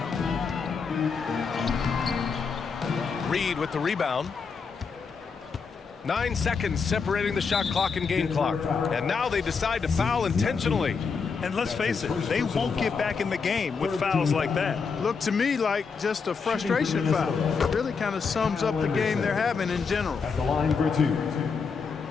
Reed with the rebound. 9 seconds separating the shot clock and game clock. And now they decide to foul intentionally. And let's face it, they won't get back in the game with fouls like that. Looked to me like just a frustration foul. It really kind of sums up the game they're having in general. At the line for 2.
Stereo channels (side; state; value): right; quieter; 5.4 dB